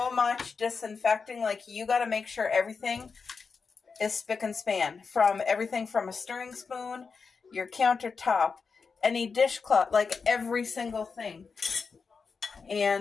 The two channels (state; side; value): quieter; right; 5.1 dB